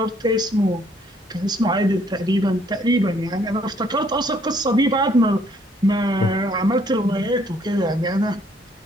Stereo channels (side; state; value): both; normal; correlation 0.65